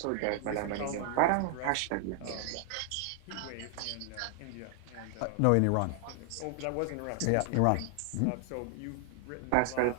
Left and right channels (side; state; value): both; different; correlation 0.00